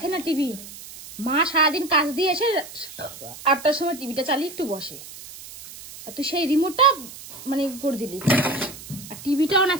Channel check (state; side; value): noise; right; hiss, 15 dB below the sound